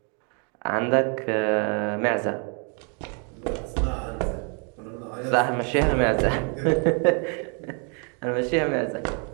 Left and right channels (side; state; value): left; quieter; 37.6 dB